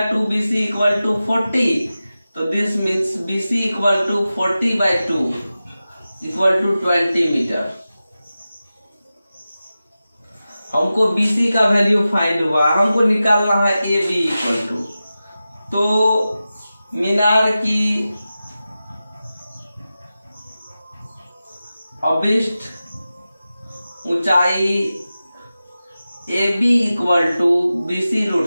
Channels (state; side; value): inverted; both; correlation -0.94